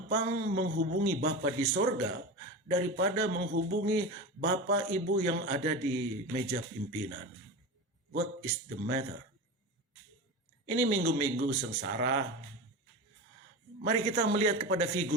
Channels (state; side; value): normal; both; correlation 0.26